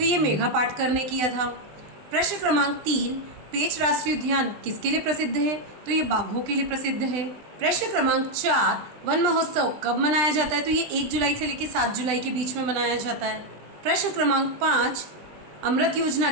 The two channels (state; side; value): late; left; 20 ms